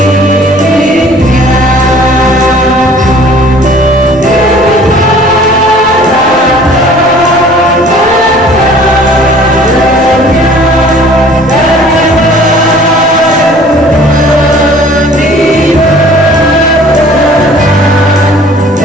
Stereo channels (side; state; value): both; normal; correlation 0.51